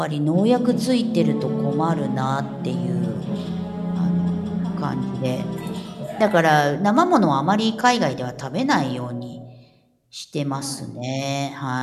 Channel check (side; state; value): both; identical; correlation 1.00